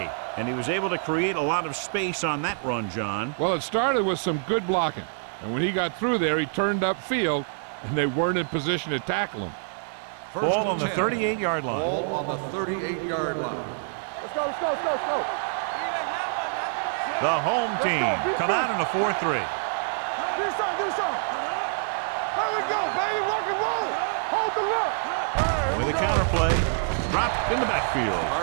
And he was able to create a lot of space on that run, John. Well, it started with some good blocking. And when he got through there, he turned upfield, and they weren't in position to tackle him. Ball on the 38-yard line. Ball on the 38-yard line. Let's go. The home team come out in a 4-3. Do something. There we go, baby. Rock and roll. Hold the look. With a counterplay, dropped in the backfield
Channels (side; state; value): left; silent; digital silence